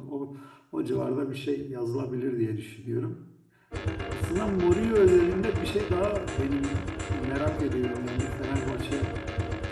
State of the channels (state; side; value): identical; both; correlation 1.00